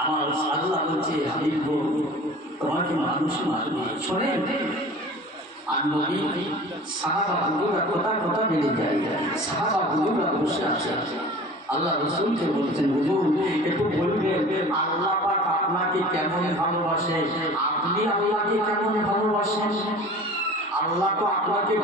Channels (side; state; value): both; normal; correlation 0.41